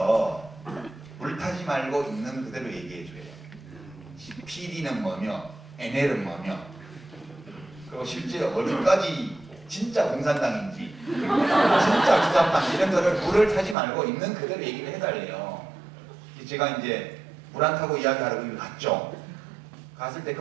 불타지 말고 있는 그대로 얘기해 줘요. PD는 뭐며 NL은 뭐며 그리고 실제 어디까지 진짜 공산당인지 진짜 주사파인지 이런 거를 불을 타지 말고 있는 그대로 얘기를 해달래요. 제가 이제 물 안 타고 이야기하러 거기 갔죠. 갔을 때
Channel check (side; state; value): left; drops out; at 13.8 s